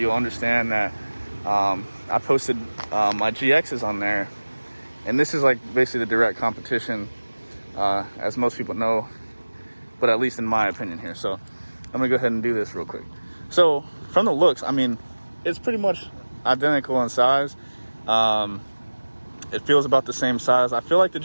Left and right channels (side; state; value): both; inverted; correlation -1.00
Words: understand that I posted my GXs on there, and this is like basically the direct competition, as most people know, but at least in my opinion here. So I'm gonna go ahead and do this real quick. So from the looks, I mean, it's pretty much identical in size. It feels about the same size. I feel like the